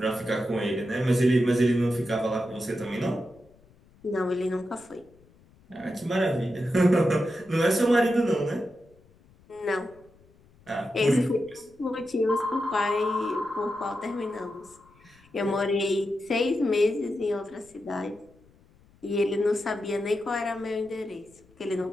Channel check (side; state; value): left; noise; rumble, 29 dB below the sound